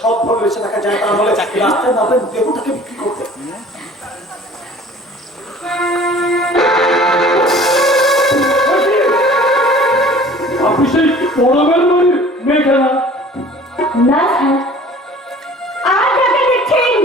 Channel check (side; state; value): both; normal; correlation 0.48